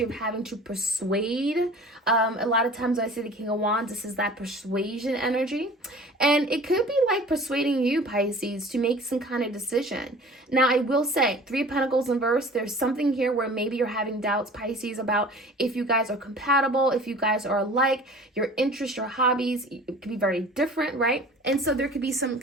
of having to persuade. A lot of times when I say the King of Wands, this is that persuasion energy. And it could be like persuading you, Pisces, to make some kind of decision. Now, I will say, 3 of Pentacles in reverse, there's something here where maybe you're having doubts, Pisces, about if you guys are compatible, if you guys are alike, your interests, your hobbies, it could be very different, right? And so there could be some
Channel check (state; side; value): normal; both; correlation 0.44